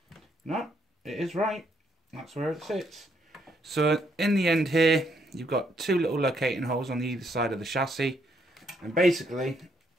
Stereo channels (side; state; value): both; normal; correlation 0.73